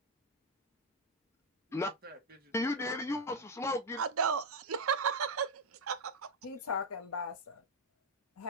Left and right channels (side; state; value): both; normal; correlation 0.03